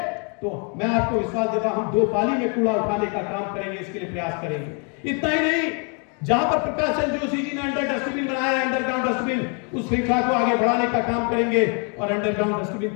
तो मैं आपको विश्वास देता हूं हम 2 पाली में कूड़ा उठाने का काम करेंगे, इसके लिए प्रयास करेंगे। इतना ही नहीं, जहां पर प्रकाश चंद्र जोशी जी ने अंडर डस्टबिन बनाया है, अंडरग्राउंड डस्टबिन, उस श्रृंखला को आगे बढ़ाने का काम करेंगे और अंडरग्राउंड डस्टबिन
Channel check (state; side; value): quieter; right; 37.5 dB